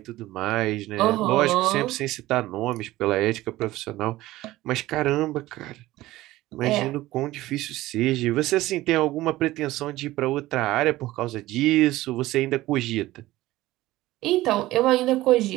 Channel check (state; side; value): quieter; left; 17.0 dB